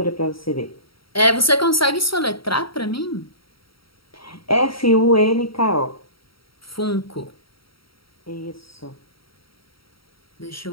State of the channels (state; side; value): late; right; 0.75 ms